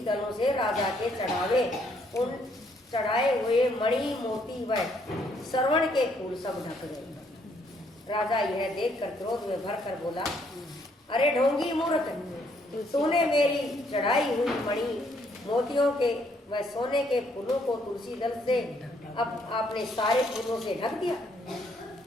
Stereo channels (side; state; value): both; normal; correlation 0.69